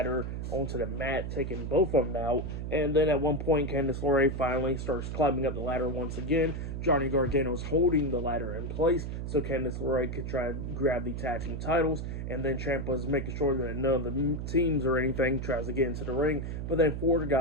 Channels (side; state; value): right; noise; hum, 4 dB below the sound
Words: onto the mat, taking both of them out, and then at one point, Candice LeRae finally starts climbing up the ladder once again. Johnny Gargano's holding the ladder in place so Candice LeRae could try to grab the tag team titles, and then Ciampa's making sure that none of the teams or anything tries to get into the ring, but then Ford